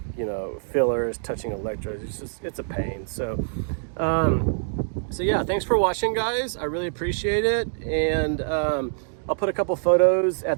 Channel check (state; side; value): silent; left; digital silence